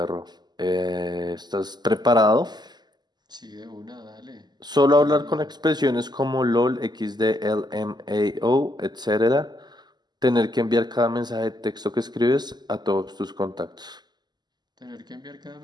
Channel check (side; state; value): left; late; 0.21 ms